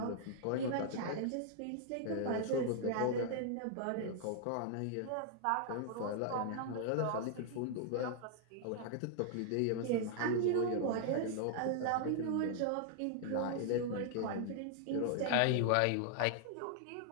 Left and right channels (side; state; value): both; different; correlation -0.01